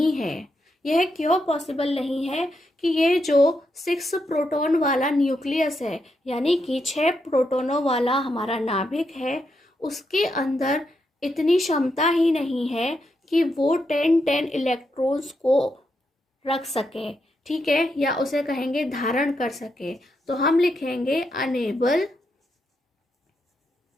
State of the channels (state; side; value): normal; both; correlation 0.82